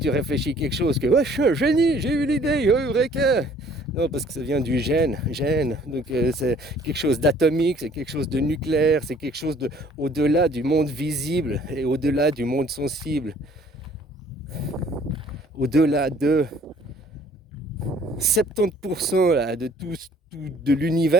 réfléchis quelque chose, que ouais, je suis un génie, j'ai eu l'idée, oh, eureka. Non, parce que ça vient du gène. Donc c'est quelque chose d'atomique, c'est quelque chose de nucléaire, c'est quelque chose de au-delà du monde visible et au-delà du monde sensible. Au-delà de 70% là, de tout de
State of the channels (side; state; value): both; normal; correlation 0.57